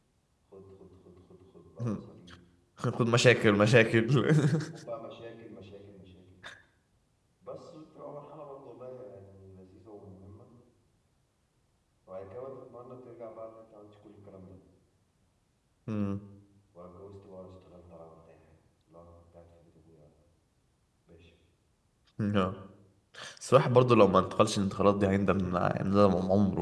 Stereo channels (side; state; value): both; identical; correlation 1.00